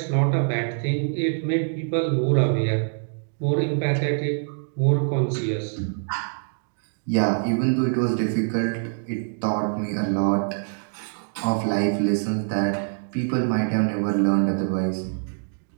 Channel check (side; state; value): left; silent; digital silence